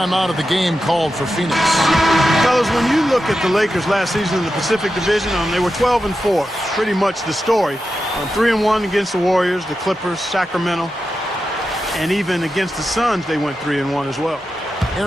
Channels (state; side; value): normal; both; correlation 0.90